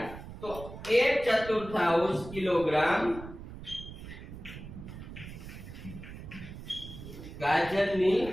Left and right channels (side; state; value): right; noise; rumble, 12 dB below the sound